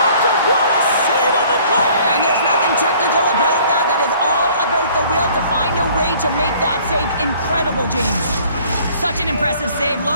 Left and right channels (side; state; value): both; inverted; correlation -0.55